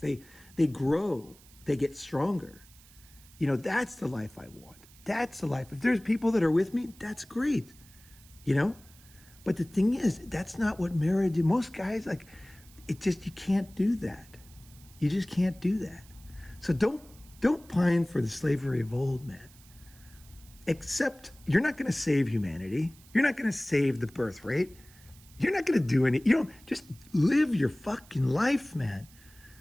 They grow. They get stronger. That's the life I want. That's the life. If there's people that are with me, that's great. But the thing is, that's not what marriage is. Most guys, you can't do that. You just can't do that. So don't pine for the slavery of old, man. Except you're not going to save humanity. You're not going to save the birth rate. You're not going to do any, just live your fucking life, man.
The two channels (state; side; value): noise; right; hiss, 24 dB below the sound